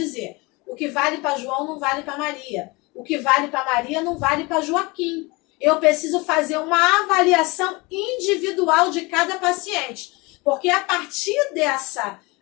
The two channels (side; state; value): right; quieter; 25.3 dB